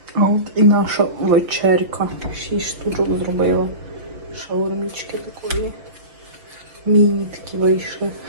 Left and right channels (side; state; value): left; late; 6.1 ms